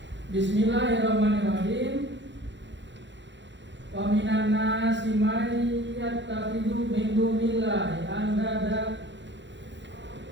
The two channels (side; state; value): left; late; 0.53 ms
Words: Bismillahirrahmanirrahim. Wa minan nasi may yattakhidhu min dunillahi andada